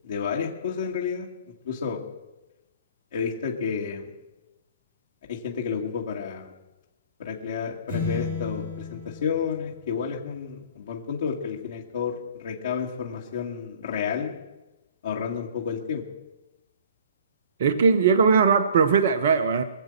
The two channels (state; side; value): inverted; both; correlation -0.50